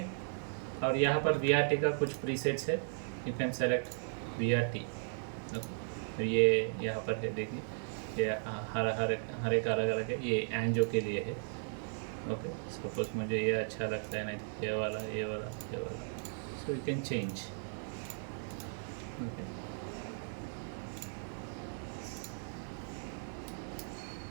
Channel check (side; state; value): left; silent; digital silence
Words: और यहाँ पर VRT का कुछ प्रीसेट्स है, you can select VRT, okay. ये यहाँ पर है, देखिए ये हर एक अलग अलग है, ये एंजियो के लिए है, ओके सपोज मुझे ये अच्छा लगता है, नहीं तो ये वाला ये वाला ये वाला, सो you can change. Okay